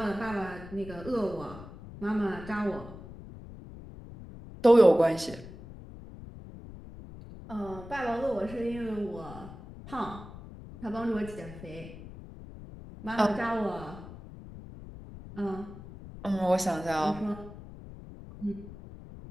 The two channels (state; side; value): noise; left; rumble, 14 dB below the sound